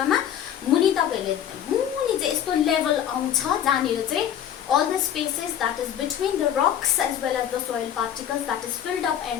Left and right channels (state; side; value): quieter; right; 10.0 dB